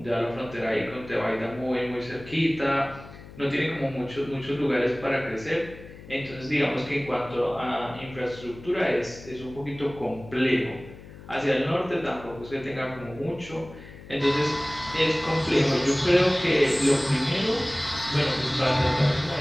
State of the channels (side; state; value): left; noise; hum, 17 dB below the sound